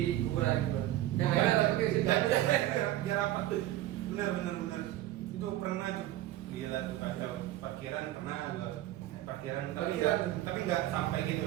kuburan gitu? Yang lainnya tapi kayak gitu. Biar apa? Bener. Itu pernah tuh. Gila tuh kacau. Parkiran pernah gua. Parkiran tapi nggak sampai gitu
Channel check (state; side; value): quieter; left; 14.6 dB